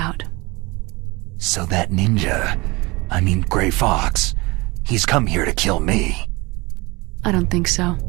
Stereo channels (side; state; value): left; quieter; 23.9 dB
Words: So that ninja, I mean Grey Fox, he's come here to kill me. I don't think so.